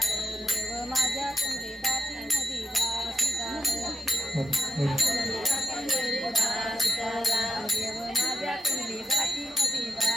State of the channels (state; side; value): normal; both; correlation 0.86